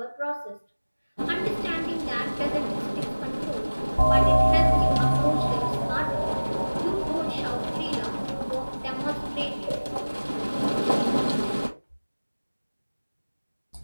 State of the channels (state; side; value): inverted; both; correlation -1.00